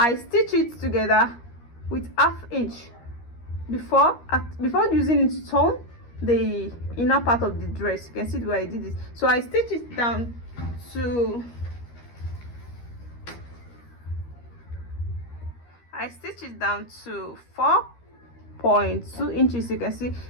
stitch it together with ½ inch before using it to turn the inner part of the dress. You can see the way I did this. So I stitch it down to 4.2 inches. You can see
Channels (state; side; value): late; right; 13 ms